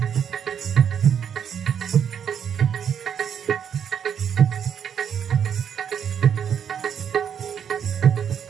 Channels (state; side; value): quieter; left; 8.2 dB